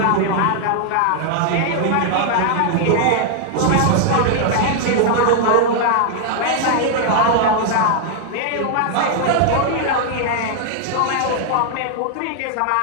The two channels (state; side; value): different; both; correlation 0.00